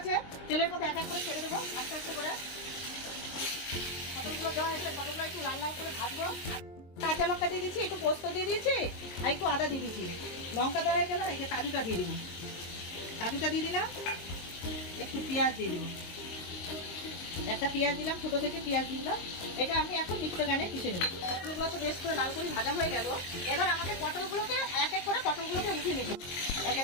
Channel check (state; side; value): late; right; 22 ms